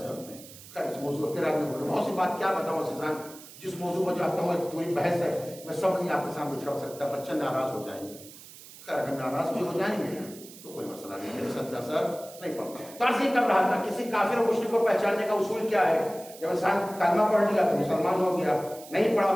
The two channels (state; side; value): noise; right; hiss, 18 dB below the sound